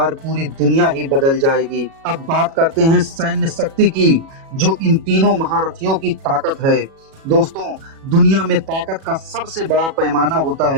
पूरी दुनिया ही बदल जाएगी। अब बात करते हैं सैन्य शक्ति की, जो इन तीनों महारथियों की ताकत है। दोस्तों, दुनिया में ताकत का सबसे बड़ा पैमाना होता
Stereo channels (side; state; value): left; late; 37 ms